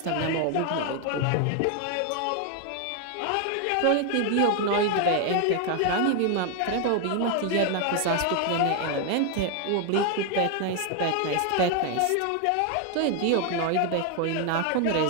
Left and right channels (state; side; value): different; both; correlation 0.00